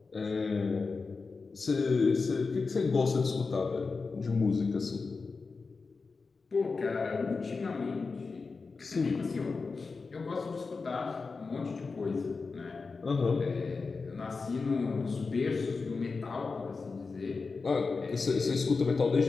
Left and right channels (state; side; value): quieter; right; 4.4 dB